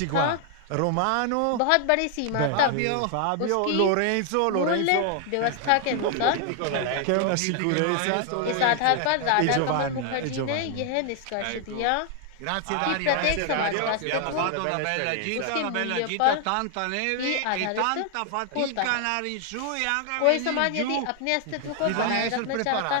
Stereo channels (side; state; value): both; different; correlation 0.00